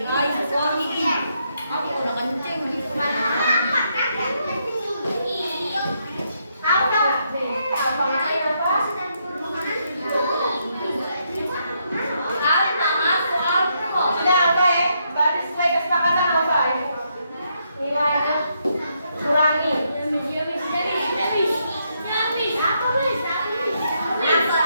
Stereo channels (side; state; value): both; inverted; correlation -0.77